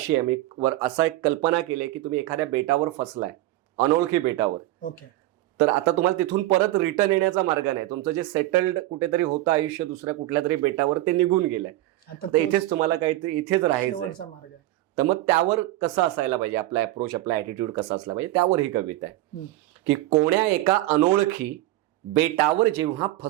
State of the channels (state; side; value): quieter; left; 16.5 dB